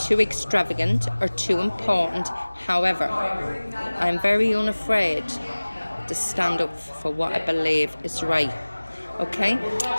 extravagant or too important. However, I'm very unafraid to stand up for what I believe is right. Okay?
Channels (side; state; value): both; inverted; correlation -1.00